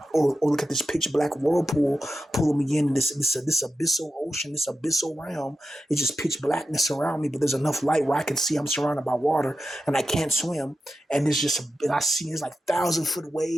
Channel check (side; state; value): both; normal; correlation 0.90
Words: Or look at this pitch black whirlpool pulling me in this abyssal ocean, this abyssal realm. It's just pitch blackness around me, but there's enough light where I can see I'm surrounded by water and I can't swim. And and I see there's like 1,000 foot